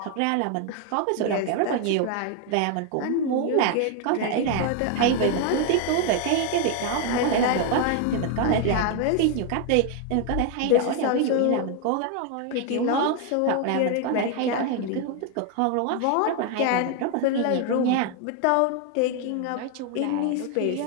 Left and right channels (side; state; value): both; different; correlation 0.00